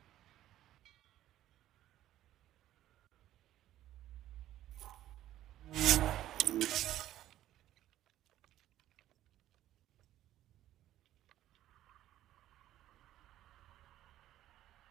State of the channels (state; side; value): quieter; left; 13.3 dB